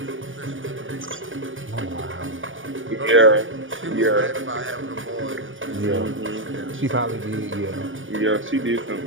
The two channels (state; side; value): late; left; 0.57 ms